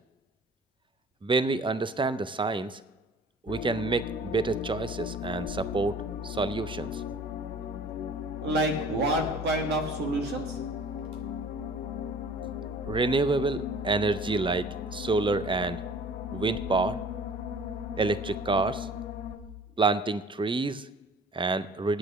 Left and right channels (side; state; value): both; normal; correlation 0.47